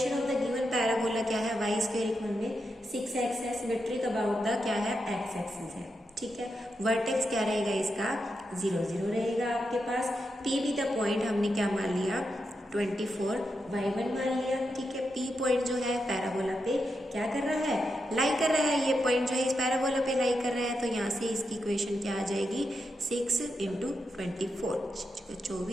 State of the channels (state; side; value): normal; both; correlation 0.86